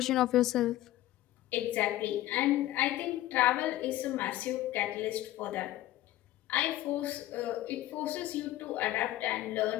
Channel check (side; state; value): right; quieter; 15.1 dB